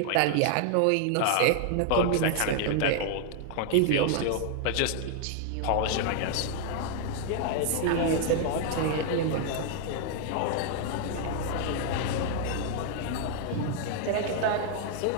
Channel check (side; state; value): both; different; correlation 0.00